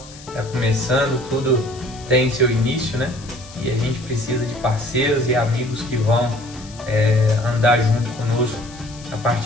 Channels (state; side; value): noise; left; hiss, 19 dB below the sound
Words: Está começando, tudo tem seu início, né? E a gente precisa de parceiros e amigos que vão andar junto conosco a